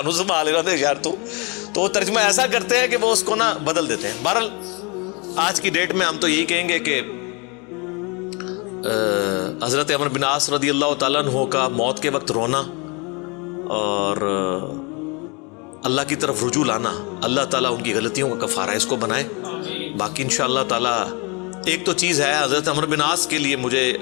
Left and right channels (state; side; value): quieter; right; 30.2 dB